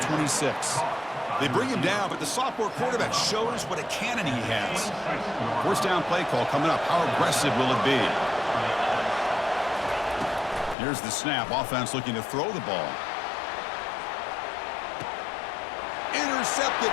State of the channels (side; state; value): right; drops out; at 10.8 s